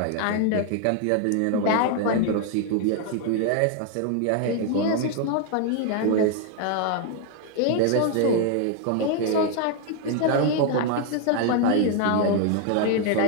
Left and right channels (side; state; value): both; different; correlation 0.00